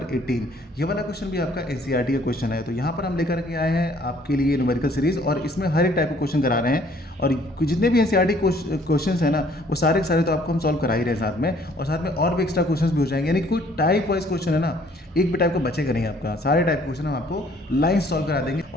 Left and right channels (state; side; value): normal; both; correlation 0.60